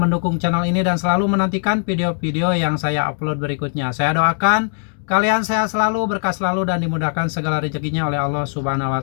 channel ini, dan selalu menantikan video-video yang saya upload berikutnya. Saya doakan kalian sehat selalu, berkah selalu, dan dimudahkan segala rezekinya oleh Allah Subhanahu wa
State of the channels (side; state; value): right; silent; 60 dB below the other